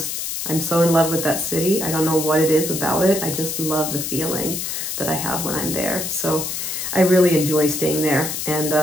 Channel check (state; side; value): noise; left; hiss, 4 dB below the sound